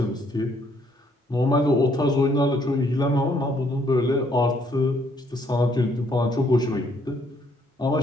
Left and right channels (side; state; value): both; normal; correlation 0.68